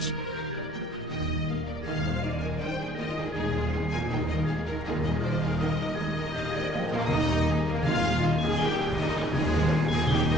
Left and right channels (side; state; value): both; normal; correlation 0.61